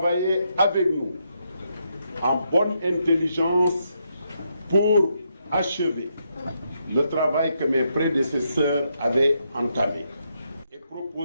avec nous en bonne intelligence pour achever le travail que mes prédécesseurs avaient entamé et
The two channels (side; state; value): both; inverted; correlation -0.79